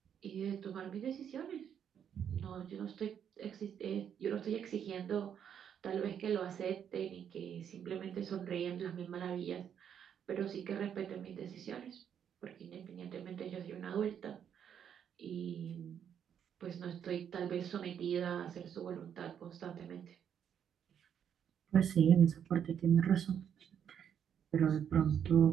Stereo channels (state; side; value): quieter; left; 8.6 dB